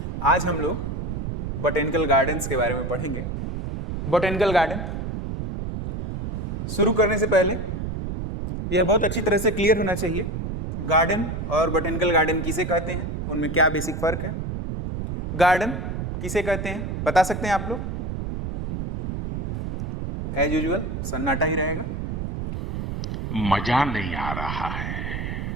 आज हम लोग बोटेनिकल गार्डन्स के बारे में पढ़ेंगे। बोटेनिकल गार्डन शुरू करने से पहले यह बहुत अच्छी तरह से क्लियर होना चाहिए, गार्डन और बोटेनिकल गार्डन किसे कहते हैं, उनमें क्या बेसिक फर्क है। गार्डन किसे कहते हैं बता सकते हैं आप लोग? एज यूजुअल सन्नाटा ही रहेगा, मजा नहीं आ रहा है।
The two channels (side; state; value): right; noise; rumble, 4 dB below the sound